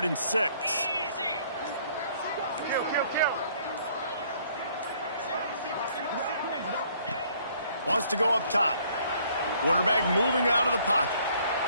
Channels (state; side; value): inverted; both; correlation -0.62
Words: and 6. Wants to go up top. Quarterback moving out of the pocket.